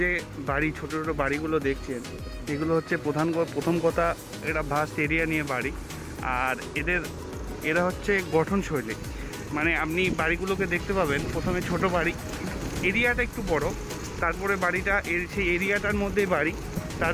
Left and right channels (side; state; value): both; identical; correlation 1.00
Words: যে বাড়ি, ছোট ছোট বাড়িগুলো দেখছেন, এগুলো হচ্ছে প্রথম কথা, এটা ভাস্ট এরিয়া নিয়ে বাড়ি। আর এরা হচ্ছে গঠনশৈলী, মানে আপনি বাড়িগুলোকে দেখতে পাবেন প্রথমে ছোট বাড়ি, এরিয়াটা একটু বড়, তারপরে বাড়িটা সেই এরিয়াটার মধ্যেই বাড়ি,